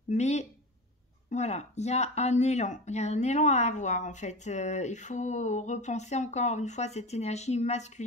Mais Voilà, il y a un élan, il y a un élan à avoir en fait. Il faut repenser encore une fois cette énergie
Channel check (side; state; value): both; normal; correlation 0.27